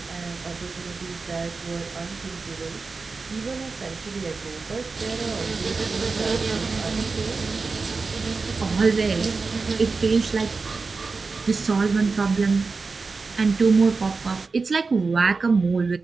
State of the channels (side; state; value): left; quieter; 4.3 dB